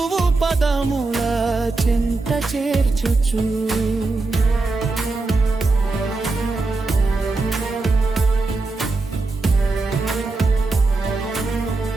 పదముల చింత చేర్చుచు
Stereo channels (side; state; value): left; quieter; 3.5 dB